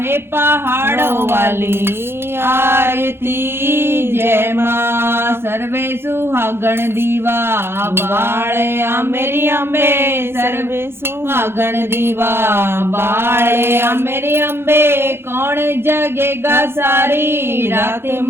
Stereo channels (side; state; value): left; late; 0.11 ms